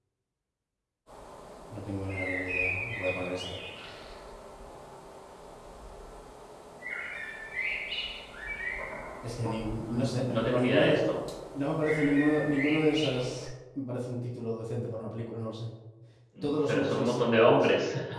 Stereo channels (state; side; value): identical; both; correlation 1.00